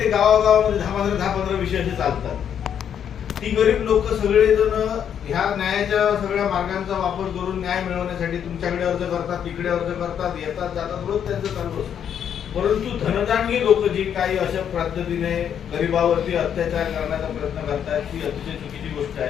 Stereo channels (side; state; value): right; quieter; 8.7 dB